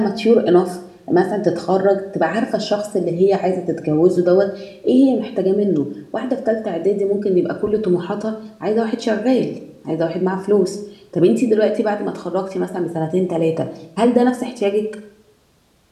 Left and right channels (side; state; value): both; identical; correlation 1.00